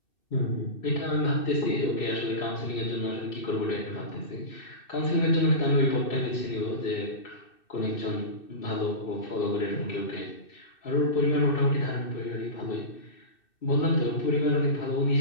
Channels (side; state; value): right; late; 2.6 ms